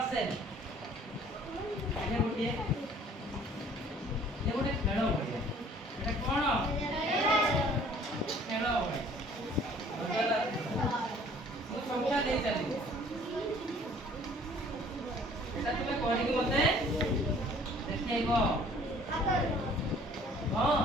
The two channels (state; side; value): normal; both; correlation 0.54